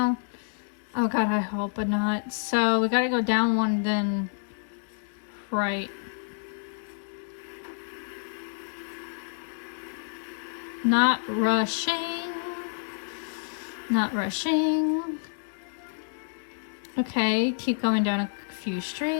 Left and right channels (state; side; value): silent; right; 57 dB below the other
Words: Oh god, I hope not. So we gotta go down one, then right. Not rushing. Not rushing. Okay, keep going down a few